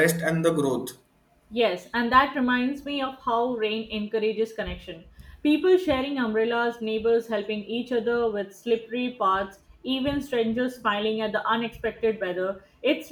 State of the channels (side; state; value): both; identical; correlation 1.00